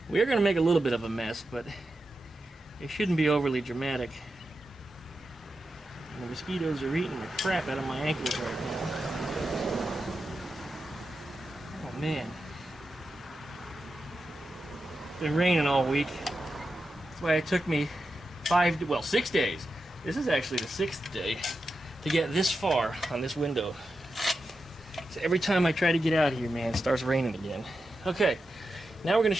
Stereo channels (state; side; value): normal; both; correlation 0.89